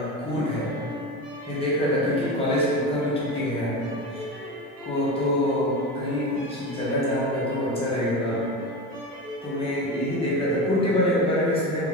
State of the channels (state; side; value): normal; both; correlation 0.24